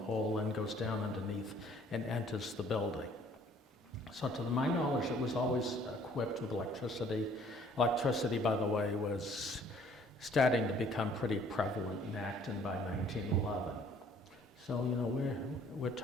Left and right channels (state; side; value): normal; both; correlation 0.58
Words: pole and goes down underneath and enters the building. So to my knowledge, it was always equipped with electricity. Electricity, by the way, was starting to become pretty prevalent in Acton by 1911. So, you know, we're